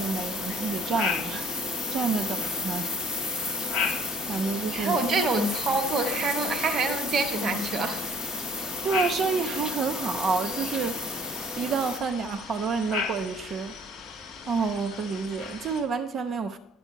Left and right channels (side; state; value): both; normal; correlation 0.56